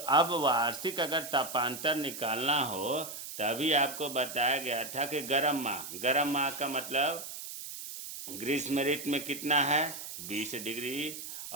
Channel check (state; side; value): noise; right; hiss, 9 dB below the sound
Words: वार्षिक अगर तापांतर निकालना हो, तभी आपको बताया गया था कि गर्म माह का मतलब ग्रीष्म ऋतु में कितना है? 20 डिग्री।